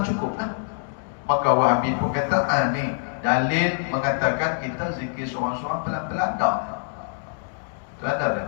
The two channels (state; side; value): silent; right; digital silence